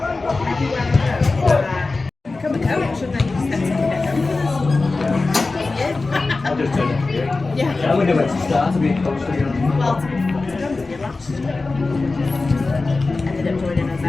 Become a coach, shouldn't I? I'll just turn it. Yeah. I wonder where to start to be a coach, to be honest. Well, to be honest with you, last year ended up joining us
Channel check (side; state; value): right; quieter; 3.6 dB